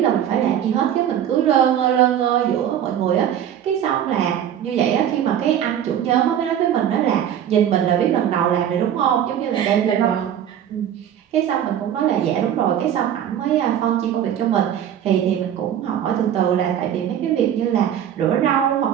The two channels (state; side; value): quieter; left; 10.0 dB